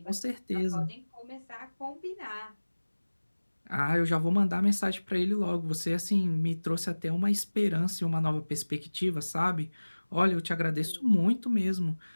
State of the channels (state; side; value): inverted; both; correlation -1.00